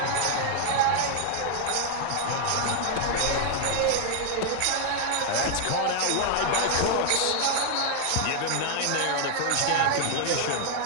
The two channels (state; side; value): different; both; correlation 0.00